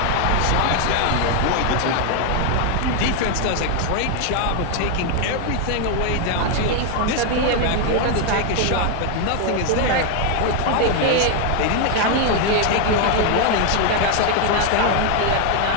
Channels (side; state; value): both; different; correlation 0.01